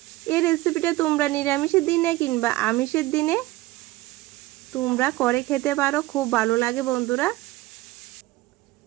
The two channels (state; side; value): quieter; left; 18.8 dB